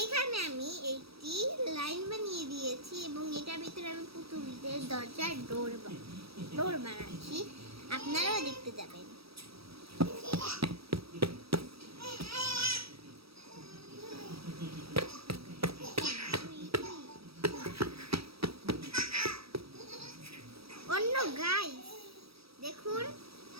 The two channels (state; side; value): late; left; 0.77 ms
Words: আমি একটি লাইন বানিয়ে দিয়েছি এবং এটার ভিতরে আমি পুতুলদের দরজার ডোর বানাচ্ছি, আপনারাও দেখতে যাবেন। অন্য গাইস দেখুন,